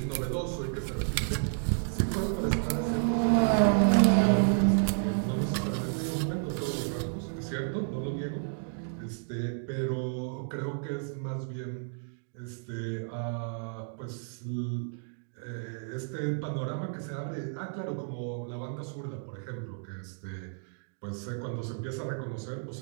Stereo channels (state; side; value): silent; left; digital silence